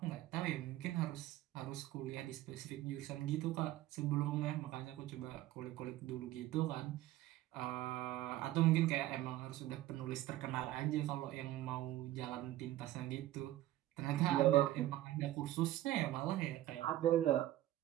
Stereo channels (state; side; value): quieter; left; 14.8 dB